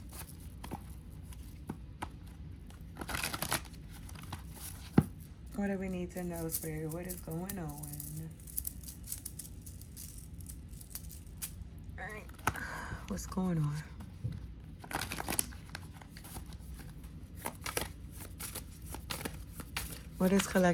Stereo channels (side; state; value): both; identical; correlation 1.00